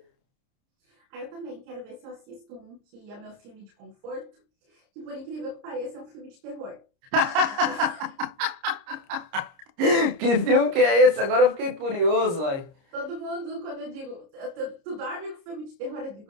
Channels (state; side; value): late; left; 30 ms